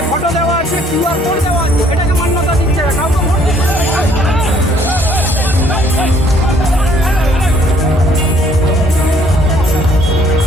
ফটো দেওয়া আছে, কিউআর কোড দেওয়া আছে, এটাকে মান্যতা দিচ্ছে না, কাউকে ভোট দিচ্ছে না।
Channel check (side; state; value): both; normal; correlation 0.62